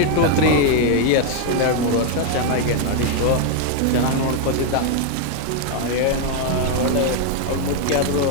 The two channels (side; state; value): both; different; correlation 0.00